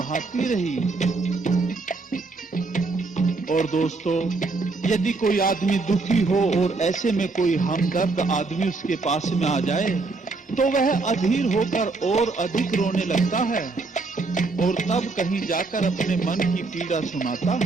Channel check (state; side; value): quieter; left; 3.8 dB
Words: रही। और दोस्तों, यदि कोई आदमी दुखी हो और ऐसे में कोई हमदर्द आदमी उसके पास में आ जाए तो वह अधीर होकर और अधिक रोने लगता है और तब कहीं जाकर अपने मन की पीड़ा सुनाता